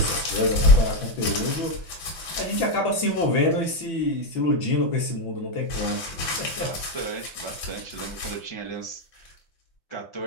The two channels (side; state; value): right; late; 6.0 ms